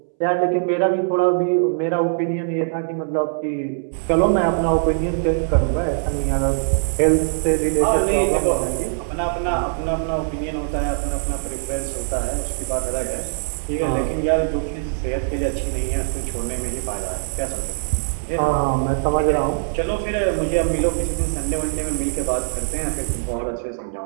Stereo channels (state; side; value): silent; left; 64 dB below the other